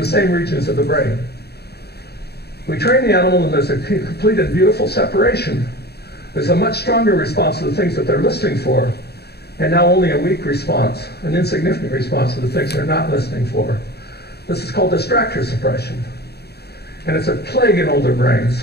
same regions of the brain. We train the animal and there's a complete and beautiful separation. There's a much stronger response to the things that they're listening for, and now only a weak response, an insignificant response to the things they're not listening for. This is called distractor suppression. And it's a plague in older brains.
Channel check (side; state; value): right; late; 0.47 ms